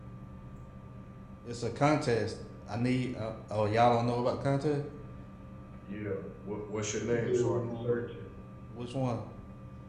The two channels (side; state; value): both; identical; correlation 1.00